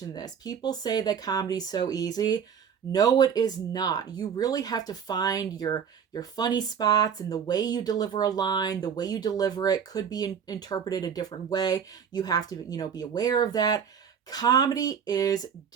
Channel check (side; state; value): left; quieter; 7.4 dB